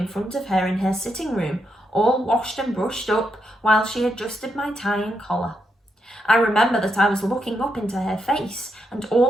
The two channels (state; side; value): normal; both; correlation 0.81